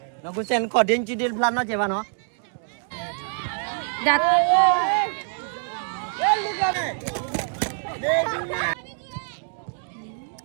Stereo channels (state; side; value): silent; left; 62 dB below the other